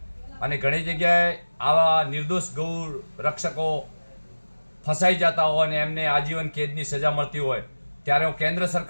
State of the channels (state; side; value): inverted; both; correlation -1.00